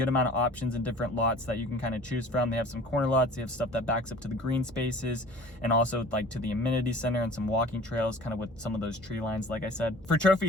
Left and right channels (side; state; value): both; normal; correlation 0.45